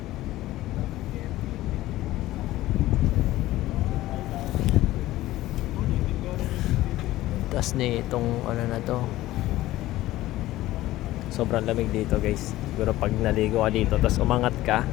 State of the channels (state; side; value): quieter; right; 16.1 dB